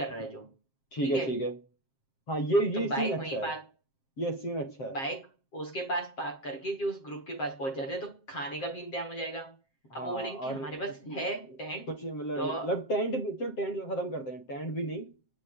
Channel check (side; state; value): right; late; 7.5 ms